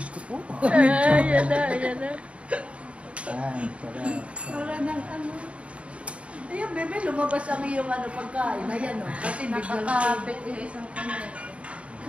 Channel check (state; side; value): late; left; 0.062 ms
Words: ko po. Ayan na. Para ng ano. Ayan, bebe, lumabas ang iyong pagkain. Ayan, o. Kasi Nakakabit yung isang kamay.